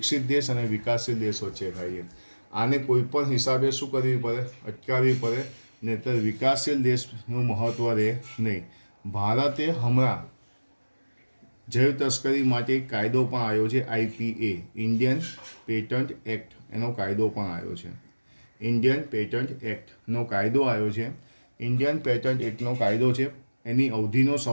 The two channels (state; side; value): inverted; both; correlation -1.00